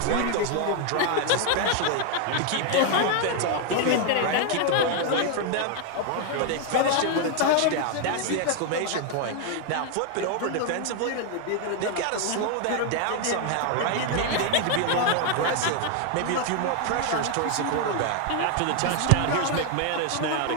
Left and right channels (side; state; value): both; different; correlation 0.00